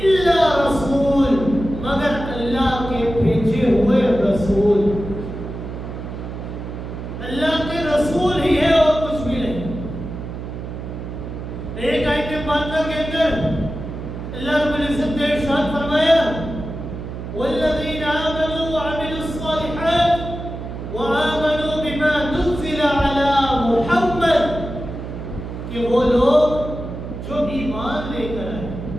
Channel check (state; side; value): noise; right; hum, 8 dB below the sound